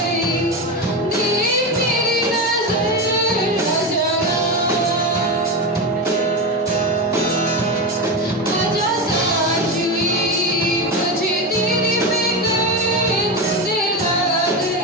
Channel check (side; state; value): both; normal; correlation 0.17